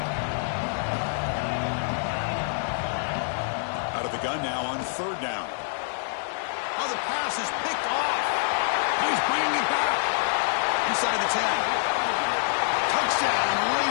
Out of the gun now on 3rd down. Oh, the pass is picked off. He's bringing it back. Inside the 10. Touchdown,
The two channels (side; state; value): right; silent; digital silence